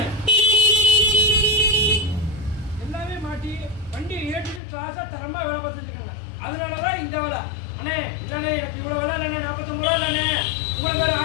எல்லாமே மாட்டி வண்டி ஏற்றுக்கு கிளாஸாக தரமாக வேலை பார்த்துருக்காங்க. அதனால தான் இந்த வேலை. அண்ணே இல்லைண்ணே எனக்கு இவ்வளோ வேலை இல்லைண்ணே, 49 ரூபா இல்லைண்ணே, உங்களுக்கு வேறு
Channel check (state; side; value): drops out; right; at 4.6 s